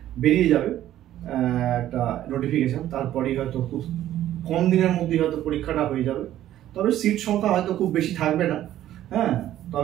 বেরিয়ে যাবে একটা নোটিফিকেশন, তারপরেই হয়তো খুব কম দিনের মধ্যেই হয়তো পরীক্ষাটা হয়ে যাবে। তবে সিট সংখ্যা হয়তো খুব বেশি থাকবে না, হ্যাঁ,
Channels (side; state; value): left; quieter; 12.8 dB